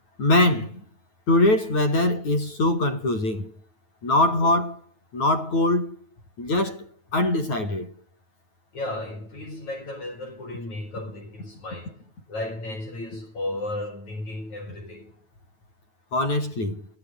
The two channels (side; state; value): right; late; 9.3 ms